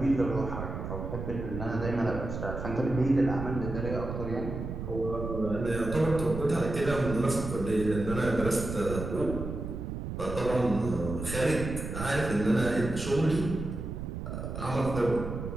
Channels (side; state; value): right; noise; rumble, 6 dB below the sound